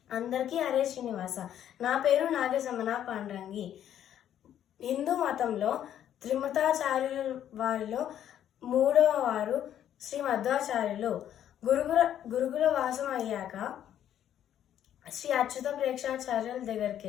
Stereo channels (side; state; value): right; quieter; 10.6 dB